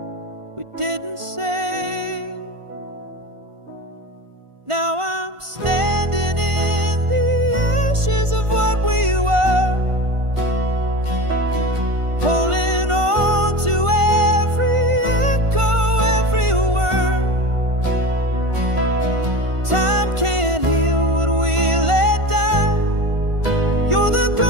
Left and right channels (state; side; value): late; left; 1.5 ms